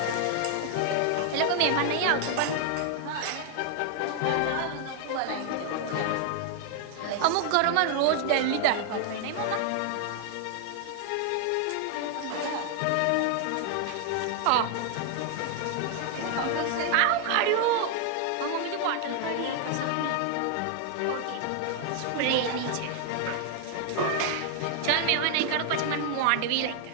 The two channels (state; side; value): different; both; correlation 0.00